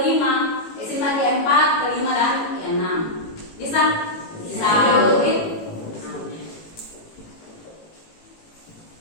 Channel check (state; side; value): late; right; 18 ms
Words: sintaks keempat, kelima dan keenam. Bisa? Bisa.